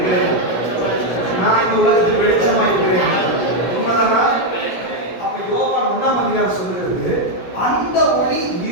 நான் இந்த உலகத்துக்கு வெளிச்சமாய் இருக்கிறேன். உண்மைதானா? அப்ப யோவான் 1ஆம் அதிகாரம் சொல்லுகிறது, அந்த ஒளி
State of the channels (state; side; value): late; right; 17 ms